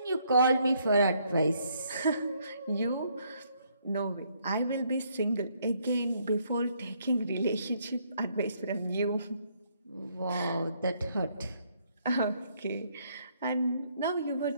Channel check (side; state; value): both; inverted; correlation -0.70